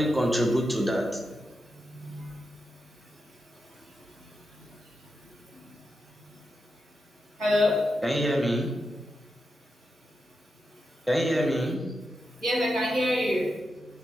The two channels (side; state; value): both; normal; correlation 0.87